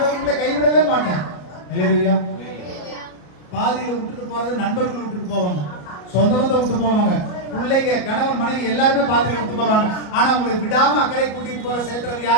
உங்களை கைவிடவே மாட்டார். ஹல்லேலூயா. பாதியில விட்டுட்டு போறது நண்பர்கள் விட்டுட்டு போவாங்க, சொந்த பந்தத்தை விட்டு போவாங்க, பிள்ளைங்க, கணவன், மனைவி எல்லாருமே பாதியில விட்டு போவாங்க. ஆனா உங்களுக்கு விடாம அக்கறை கூட்டிட்டு போற சேர்த்துறது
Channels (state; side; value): late; right; 34 ms